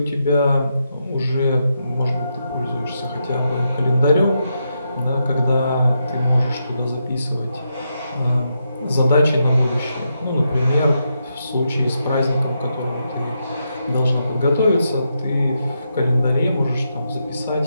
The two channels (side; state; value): both; inverted; correlation -0.83